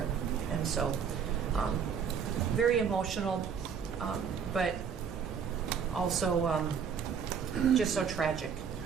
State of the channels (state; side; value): quieter; left; 7.0 dB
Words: And so very emotional, but also just so tragic.